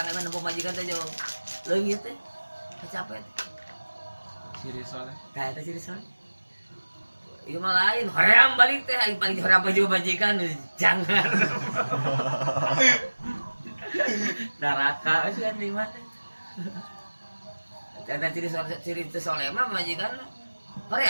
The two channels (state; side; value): inverted; both; correlation -1.00